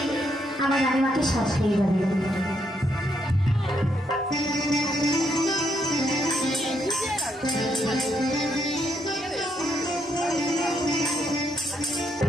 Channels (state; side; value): normal; both; correlation 0.76